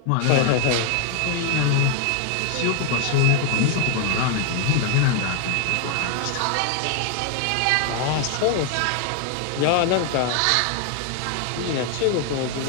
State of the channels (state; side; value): different; both; correlation 0.00